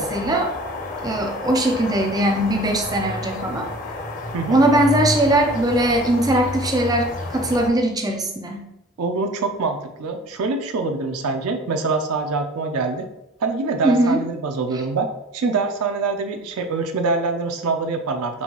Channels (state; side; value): normal; both; correlation 0.43